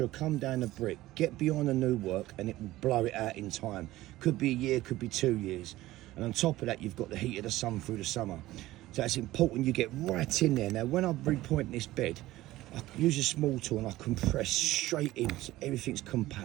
will come down the brick, get beyond the new work, and it will blow it out in time. Could be a year, could be 2 years. And on top of that, you've got the heat of the sun through the summer. So it's important you get right in there. Now, when I'm repointing this bed, I use a small tool and I compress straight in so everything's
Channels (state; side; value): quieter; left; 16.6 dB